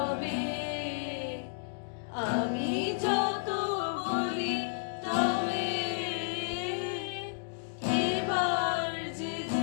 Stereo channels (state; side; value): silent; right; digital silence